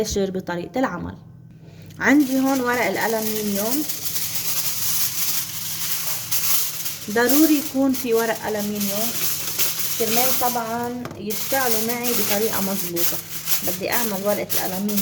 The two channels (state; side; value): identical; both; correlation 1.00